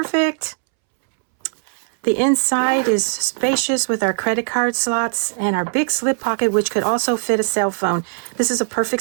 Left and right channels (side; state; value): left; silent; 66 dB below the other